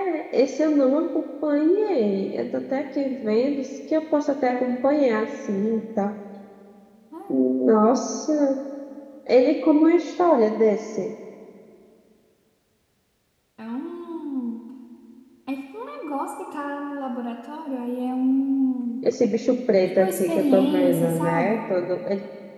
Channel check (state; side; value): identical; both; correlation 1.00